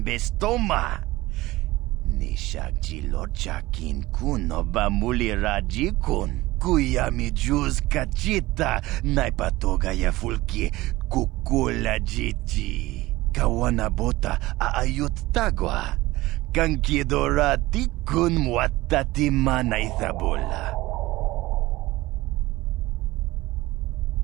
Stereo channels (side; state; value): left; quieter; 18.7 dB